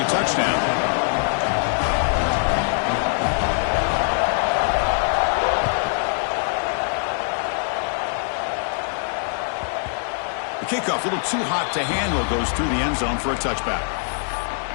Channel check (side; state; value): right; silent; 64 dB below the other